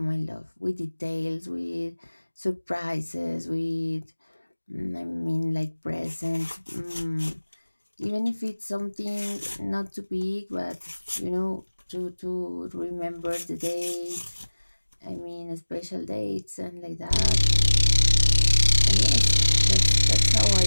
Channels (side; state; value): both; inverted; correlation -1.00